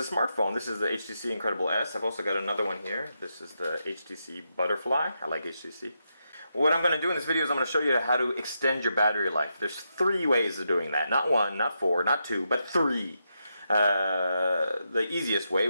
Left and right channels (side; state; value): both; inverted; correlation -0.84